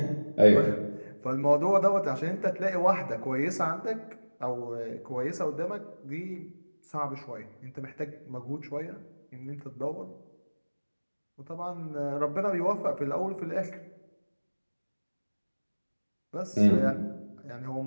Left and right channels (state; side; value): inverted; both; correlation -1.00